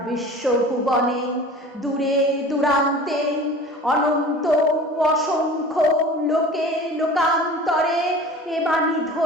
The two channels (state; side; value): normal; both; correlation 0.41